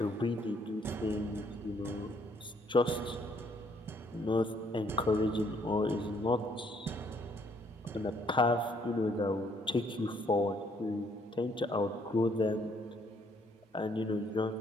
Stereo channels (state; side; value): normal; both; correlation 0.67